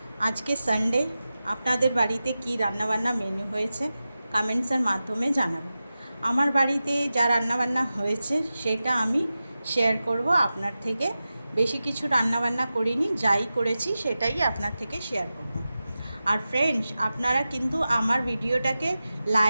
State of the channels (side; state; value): both; inverted; correlation -0.94